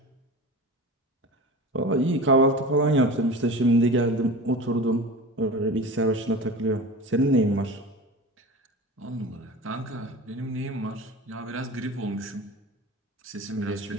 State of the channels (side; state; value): both; normal; correlation 0.32